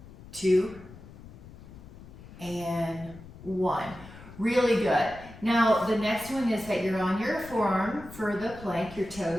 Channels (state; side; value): noise; left; rumble, 17 dB below the sound